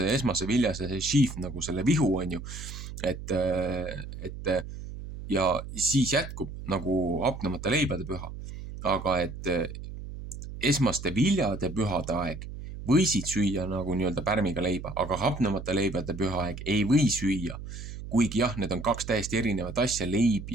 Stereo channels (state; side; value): noise; right; hum, 10 dB below the sound